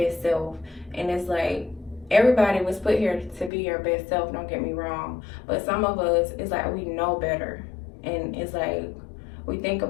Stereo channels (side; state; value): right; drops out; at 3.5 s